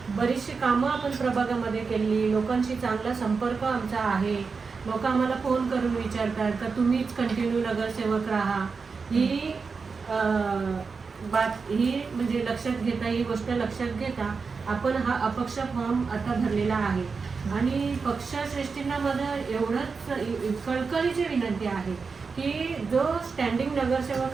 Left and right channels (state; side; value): quieter; left; 4.9 dB